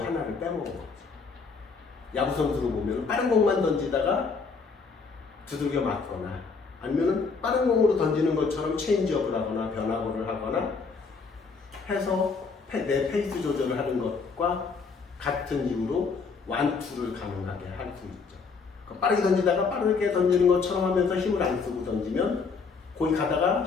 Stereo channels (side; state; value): right; quieter; 4.9 dB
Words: 하나를 빼먹은 거죠. 야구 선수로 보면 빠른 공만 던지다가 두들겨 맞거나 아니면 빠른 공으로 던지는 것처럼 체인지업을 하거나 변화구를 하거나 해서 내 페이스 조절을 하는 것과 같은 이유로 완투를 가능하게 할 수 있죠. 빠르게 던지다가 빠르게 던지는 것처럼 하면서 힘을 안 쓰고 던지면 거기 가다가